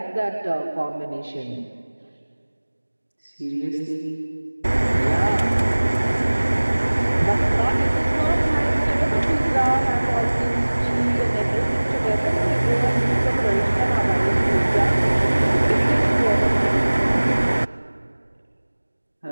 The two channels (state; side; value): inverted; both; correlation -1.00